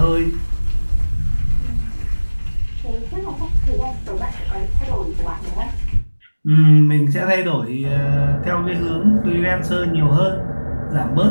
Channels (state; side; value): inverted; both; correlation -1.00